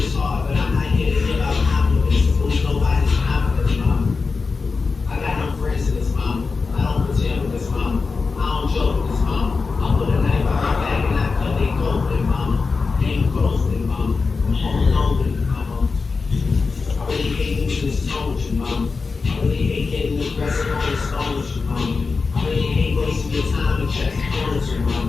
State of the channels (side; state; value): right; quieter; 4.5 dB